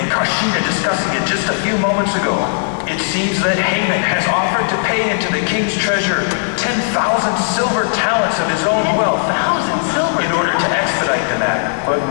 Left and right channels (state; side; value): silent; right; digital silence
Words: Karshina discussing it just a few moments ago. It seems that Haman has offered to pay into the king's treasure 10,000 silver talents of his own wealth 10,000 silver in order to expedite the matter. But